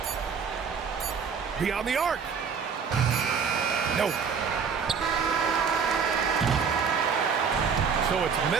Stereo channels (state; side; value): quieter; left; 6.2 dB